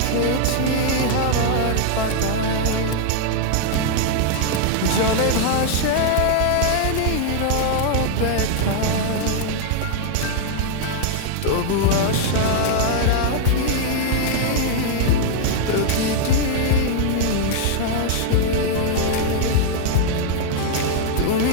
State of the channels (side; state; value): both; different; correlation 0.00